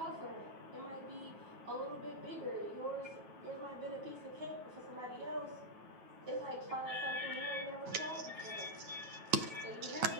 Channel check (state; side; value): late; left; 9.2 ms